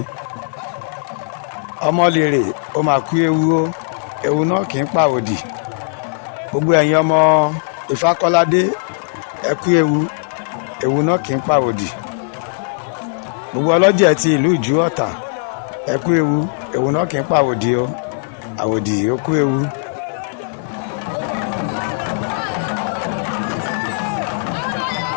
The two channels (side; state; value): right; silent; 62 dB below the other